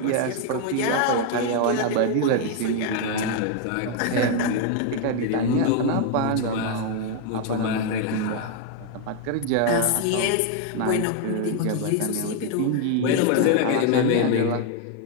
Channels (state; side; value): different; both; correlation 0.00